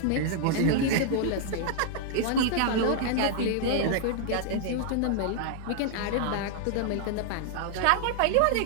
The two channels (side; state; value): both; different; correlation 0.00